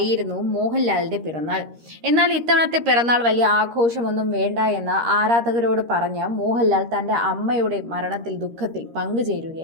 മോഹൻലാലിന്റെ പിറന്നാൾ. എന്നാൽ ഇത്തവണത്തെ പിറന്നാൾ വലിയ ആഘോഷമൊന്നും വേണ്ട എന്ന് ആരാധകരോട് പറഞ്ഞ് മോഹൻലാൽ തന്റെ അമ്മയുടെ മരണത്തിൽ ദുഃഖത്തിൽ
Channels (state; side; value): late; left; 13 ms